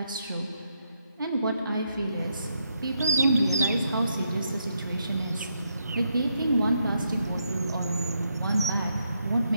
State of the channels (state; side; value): inverted; both; correlation -0.79